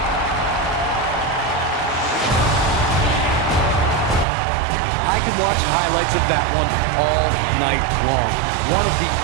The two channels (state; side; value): drops out; left; at 4.2 s